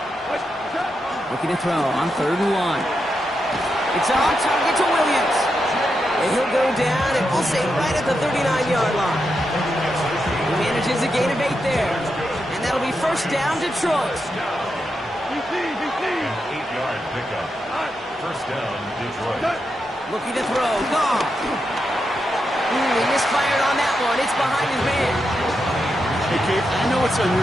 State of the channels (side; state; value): both; normal; correlation 0.85